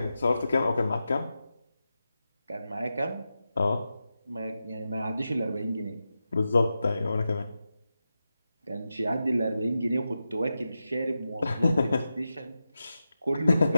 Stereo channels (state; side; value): inverted; both; correlation -0.90